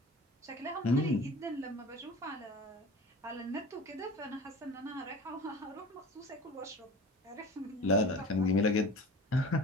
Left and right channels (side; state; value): both; normal; correlation 0.38